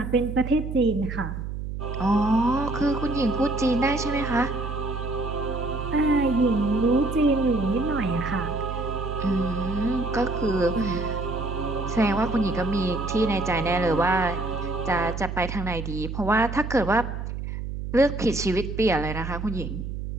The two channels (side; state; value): right; noise; hum, 6 dB below the sound